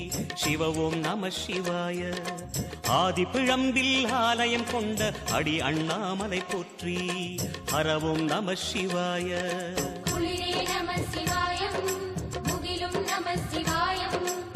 சிவ ஓம் நம சிவாய ஆதி பிழம்பில் ஆலயம் கொண்ட அடி அண்ணாமலை போற்றி ஹரவோம் நம சிவாய குளிரே நம சிவாயம் முகிலும் நம சிவாயம்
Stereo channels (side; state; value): both; identical; correlation 1.00